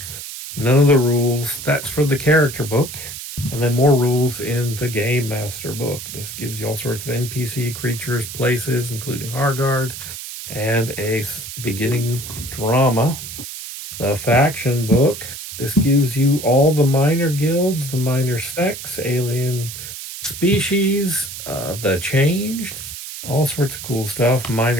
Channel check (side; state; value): right; noise; hiss, 10 dB below the sound